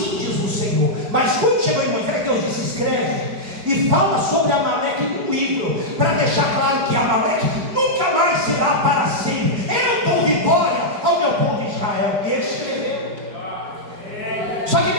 diz o Senhor. Mas quando chegou em Moisés, Deus disse: escreve e fala sobre Amaleque num livro, para deixar claro que Amaleque nunca mais será para sempre. Eu dou vitória ao meu povo Israel. E ele escreveu. Só que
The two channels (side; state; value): left; late; 5.0 ms